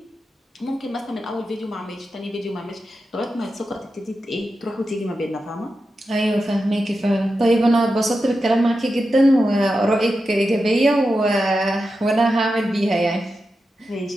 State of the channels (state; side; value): normal; both; correlation 0.90